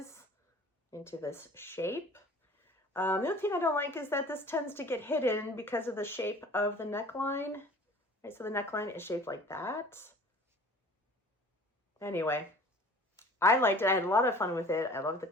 into this shape. The other thing I don't like is that this tends to get hidden because of the shape of the neckline. Right, so the neckline is shaped like that. Anyway, I liked it. I had a lot of fun with it. I love the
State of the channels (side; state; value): both; normal; correlation 0.46